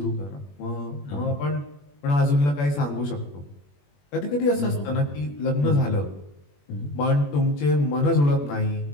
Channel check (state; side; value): late; right; 21 ms